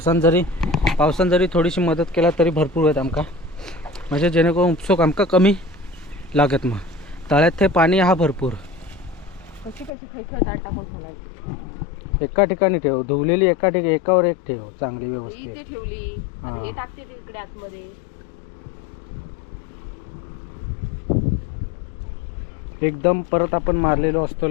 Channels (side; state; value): right; drops out; at 9.9 s